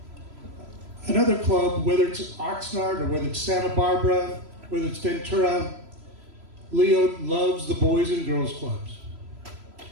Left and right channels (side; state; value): left; late; 3.0 ms